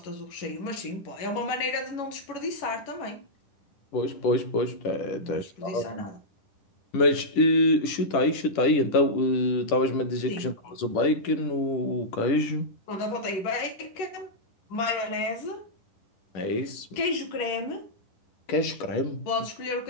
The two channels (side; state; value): right; late; 10 ms